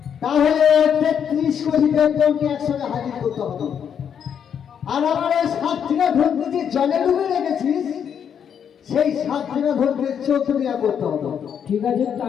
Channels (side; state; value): right; quieter; 8.1 dB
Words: তাহলে ৩৩ কোটি দেবদেবকে একসঙ্গে হাজির করতে হবে আর আমার ওই ৭ দিনা ধরতে যে জলে ডুবে রেখেছিস সেই ৭ দিনা ধরতে ১৪ দিনা করতে হবে ঠিক আছে